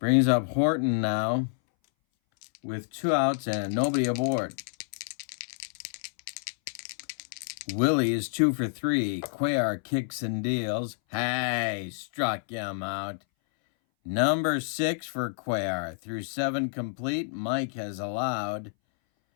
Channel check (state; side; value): silent; right; 59 dB below the other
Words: Brings up Horton now with 2 outs and nobody aboard. Willie is 2 for 3. Cuellar kicks and deals. Hey, struck him out. Number 6 for Cuellar. Through 7 complete. Mike has allowed